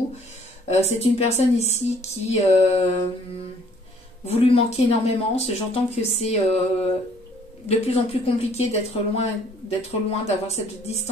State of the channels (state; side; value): normal; both; correlation 0.60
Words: C'est une personne ici qui vous lui manquez énormément. J'entends que c'est de plus en plus compliqué d'être loin, d'avoir cette